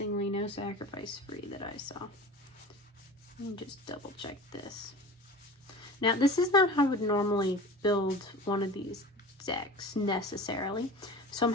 no sacrifice free that I saw. Let me just double check this. Now, this is not how I would normally build one of these decks necessarily. So I'm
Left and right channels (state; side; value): normal; both; correlation 0.36